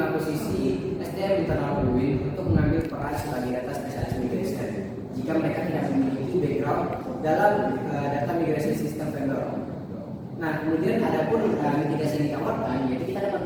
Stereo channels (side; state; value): both; identical; correlation 1.00